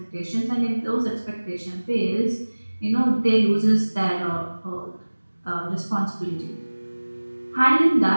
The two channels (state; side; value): inverted; both; correlation -1.00